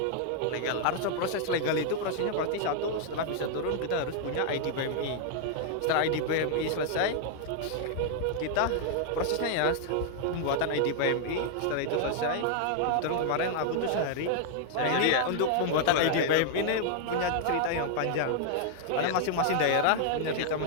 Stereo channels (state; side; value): different; both; correlation 0.00